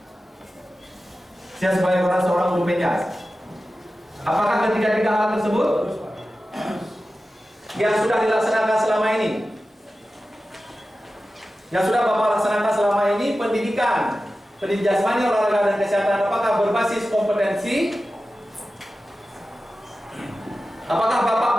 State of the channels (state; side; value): normal; both; correlation 0.94